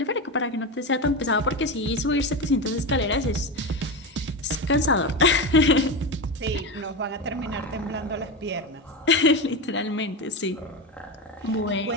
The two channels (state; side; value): normal; both; correlation 0.18